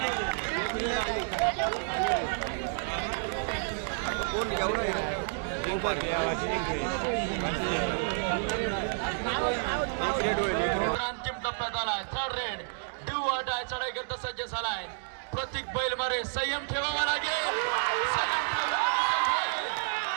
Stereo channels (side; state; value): left; silent; digital silence